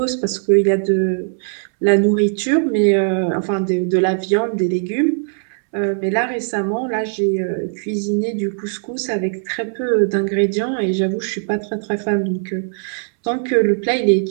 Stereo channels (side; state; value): left; silent; 66 dB below the other